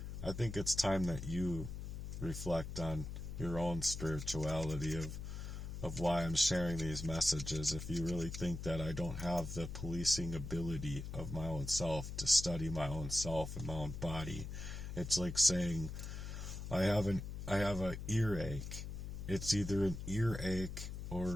I think it's time that you reflect on your own spirituality of why I'm sharing these messages. If you really think that I don't have the policing ability of my own self to study my own self and my own body, it's like saying I have an earache. It's either an earache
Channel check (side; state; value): left; noise; hum, 7 dB below the sound